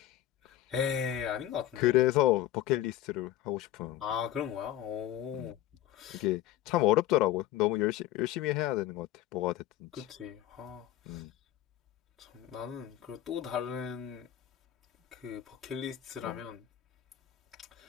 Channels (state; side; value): quieter; right; 13.0 dB